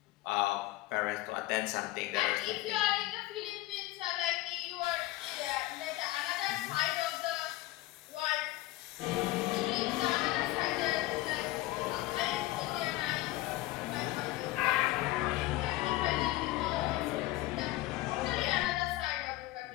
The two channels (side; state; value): right; quieter; 17.6 dB